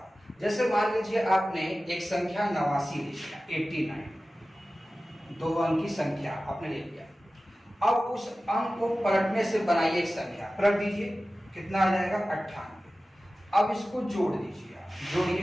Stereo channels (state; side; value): normal; both; correlation 0.96